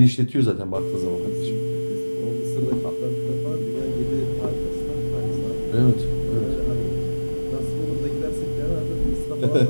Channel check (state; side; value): inverted; both; correlation -1.00